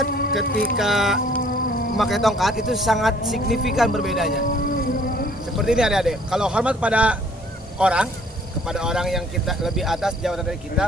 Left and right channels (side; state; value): both; normal; correlation 0.57